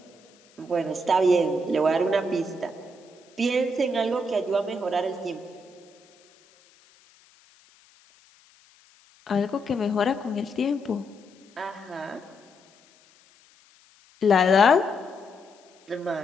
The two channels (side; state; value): left; noise; hiss, 30 dB below the sound